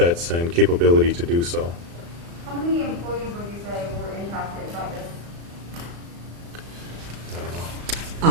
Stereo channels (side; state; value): left; late; 35 ms